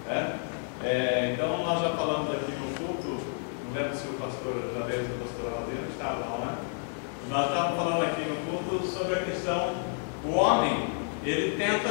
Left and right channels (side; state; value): right; silent; 58 dB below the other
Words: né? Então nós já falamos aqui no culto, não lembro se o pastor Javier e o pastor Aldeiro estavam, né? Nós estávamos falando aqui no culto sobre a questão, o homem, ele